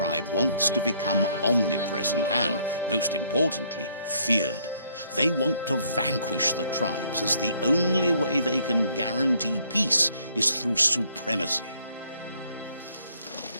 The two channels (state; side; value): inverted; both; correlation -0.66